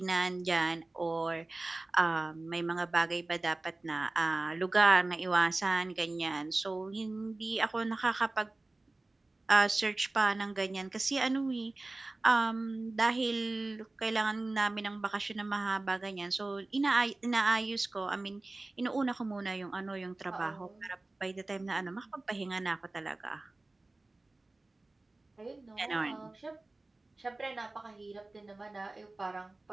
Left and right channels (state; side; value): quieter; left; 3.0 dB